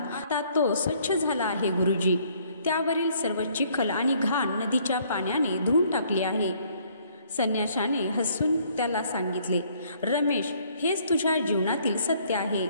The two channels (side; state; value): both; inverted; correlation -0.63